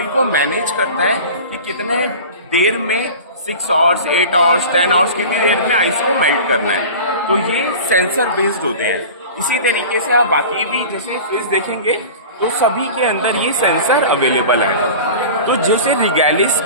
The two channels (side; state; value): both; inverted; correlation -0.36